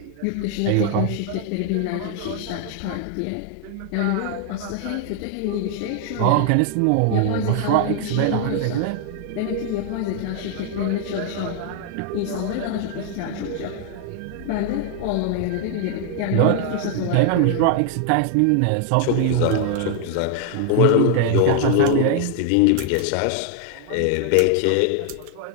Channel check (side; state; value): both; different; correlation 0.00